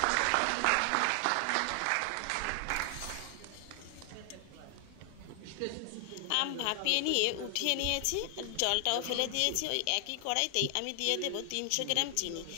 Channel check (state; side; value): different; both; correlation 0.00